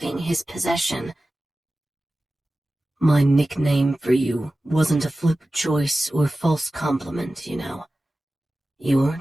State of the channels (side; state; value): both; normal; correlation 0.95